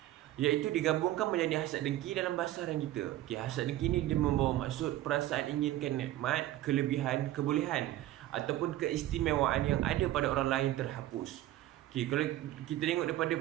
iaitu digabungkan menjadi hasad dengki dalam bahasa Arab kita. Okey, hasad dengki ni dia membawa maksud perasaan inginkan nikmat, kelebihan, kebolehan ataupun keistimewaan yang ada pada orang lain terhapus. Okey, kalau kita tengok daripada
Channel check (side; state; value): left; quieter; 14.5 dB